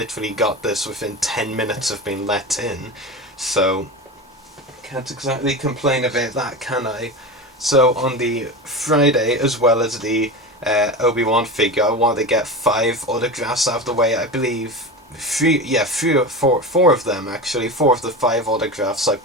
got this within 10 minutes of being let in, so can't exactly complain about that, can I? So on the Friday, as well as the Obi-Wan figure, I wanted to get 5 autographs out of the way. I believe 4 of them actually. 4 of the 5 autographs I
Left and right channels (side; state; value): both; normal; correlation 0.25